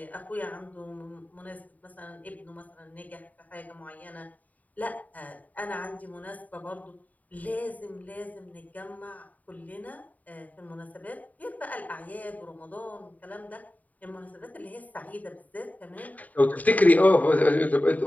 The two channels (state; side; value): late; right; 0.074 ms